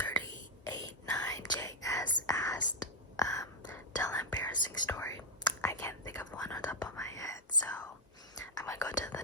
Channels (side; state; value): both; normal; correlation 0.01